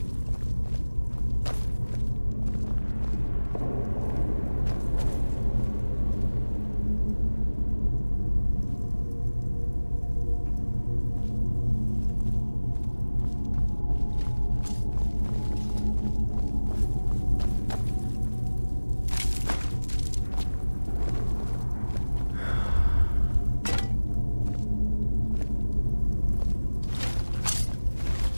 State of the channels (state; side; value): inverted; both; correlation -1.00